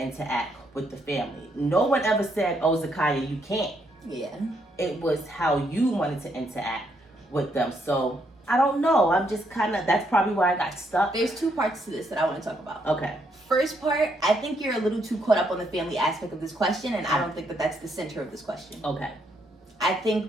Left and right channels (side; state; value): both; normal; correlation 0.74